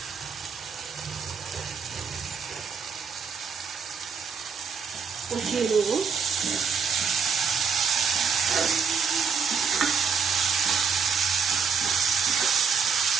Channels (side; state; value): left; quieter; 5.9 dB